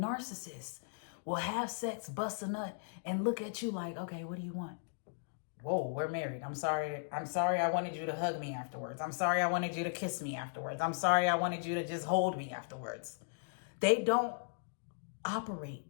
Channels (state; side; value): silent; right; digital silence